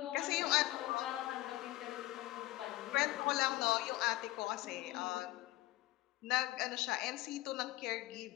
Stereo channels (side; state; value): right; quieter; 17.9 dB